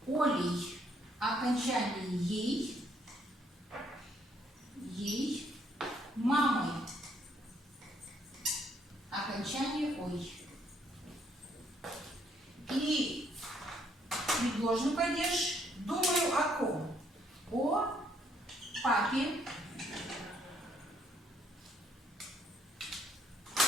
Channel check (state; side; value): normal; both; correlation 0.69